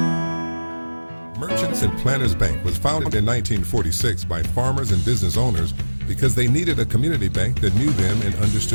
And Planters Bank was founded in 1946 by farmers and business owners because they needed a community bank that knew them and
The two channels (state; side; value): inverted; both; correlation -1.00